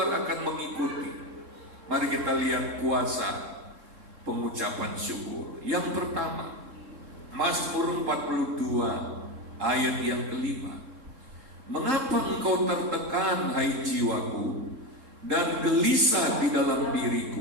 akan mengikuti. Mari kita lihat kuasa pengucapan syukur. Yang pertama, Mazmur 42 ayat yang kelima. Mengapa engkau tertekan, hai jiwaku, dan gelisah di dalam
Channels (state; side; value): late; left; 3.7 ms